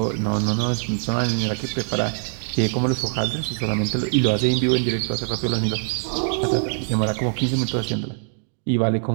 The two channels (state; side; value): silent; left; digital silence